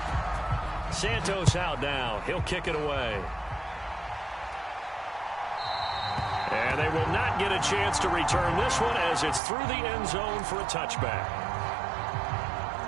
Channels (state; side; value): drops out; left; at 9.4 s